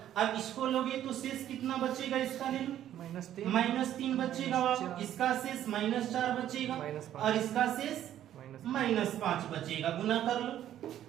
अब इसको लोगे तो शेष कितना बचेगा, इसका ले लो -3 बचेगा, इसका शेष -4 बचेगा, और इसका शेष -5 बचेगा। गुना कर लो,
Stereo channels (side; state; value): left; quieter; 11.5 dB